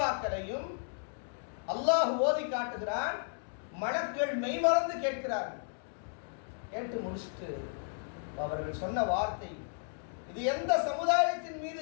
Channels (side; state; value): right; silent; digital silence